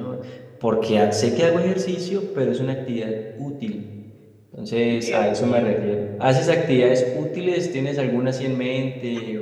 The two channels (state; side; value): identical; both; correlation 1.00